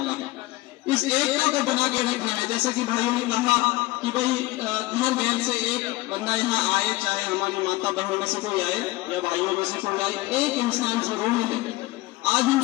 है। इस एकता को बना के रखना है। जैसे कि भाइयों ने कहा कि भाई घर घर से एक बंदा यहाँ आए, चाहे हमारी माता बहनों में से कोई आए या भाइयों में से कोई आए, एक इंसान जरूर मिले। आज हम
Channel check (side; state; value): right; quieter; 19.7 dB